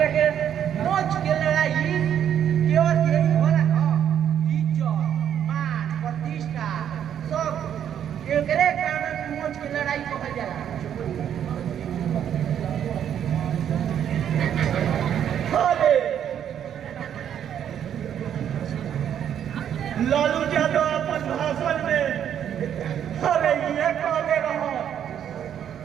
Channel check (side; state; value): left; quieter; 9.5 dB